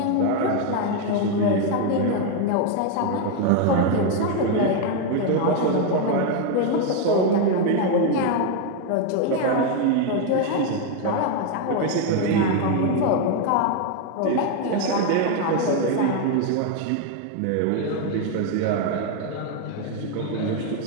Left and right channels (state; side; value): different; both; correlation 0.01